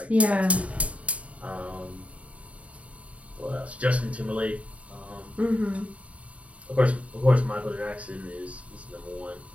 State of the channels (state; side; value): late; left; 0.065 ms